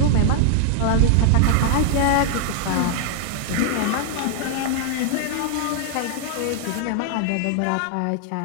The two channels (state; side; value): different; both; correlation 0.00